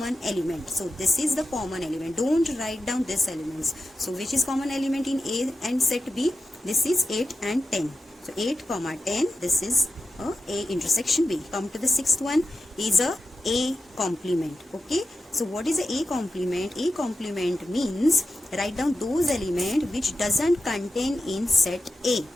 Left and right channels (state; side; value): normal; both; correlation 0.90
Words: element. So this is the common element. Don't write down these elements. So which is common element in A and set B? This is 8 and 10. So 8, 10. This is A intersection B. Come to the sixth one is A complement. Okay. So what is A complement? A complement means write down those elements which doesn't contain in set A.